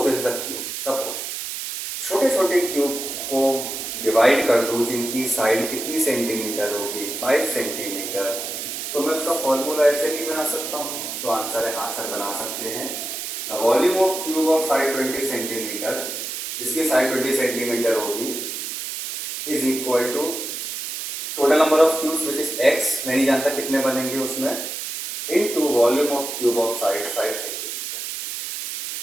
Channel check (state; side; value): noise; right; hiss, 6 dB below the sound